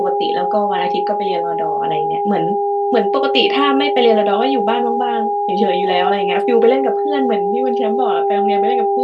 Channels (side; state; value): both; identical; correlation 1.00